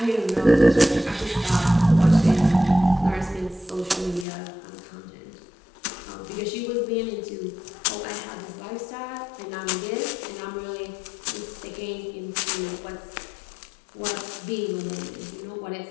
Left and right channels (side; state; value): right; drops out; at 4.2 s